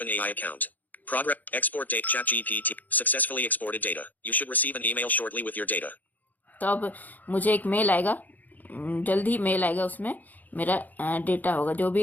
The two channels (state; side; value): late; right; 0.082 ms